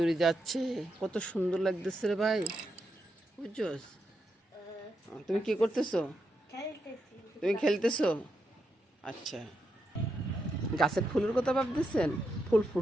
উড়ে যাচ্ছে, কত সুন্দর লাগতেছে রে ভাই, বুঝছস? তুমি কি করতেছো? খেলতেছি। তুমি খেলতেছো? আচ্ছা, গাছের ফুলের কথা ভাবতেছেন? ফুল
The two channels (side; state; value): both; normal; correlation 0.83